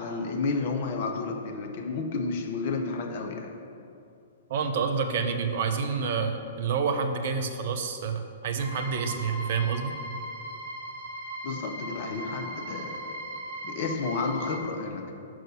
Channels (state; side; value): inverted; both; correlation -0.38